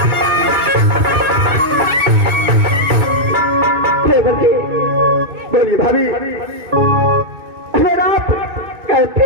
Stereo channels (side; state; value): left; late; 2.6 ms